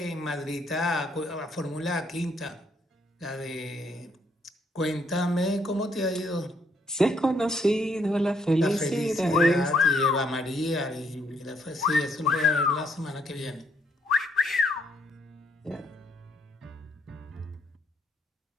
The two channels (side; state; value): both; normal; correlation 0.71